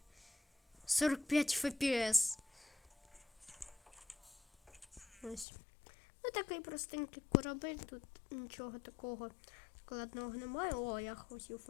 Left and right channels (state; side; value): drops out; right; at 5.5 s